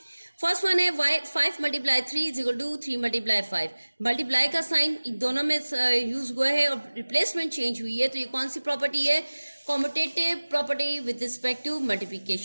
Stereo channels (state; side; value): inverted; both; correlation -1.00